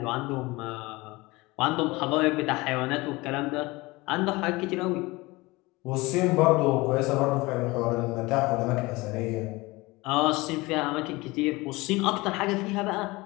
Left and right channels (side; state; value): right; quieter; 22.3 dB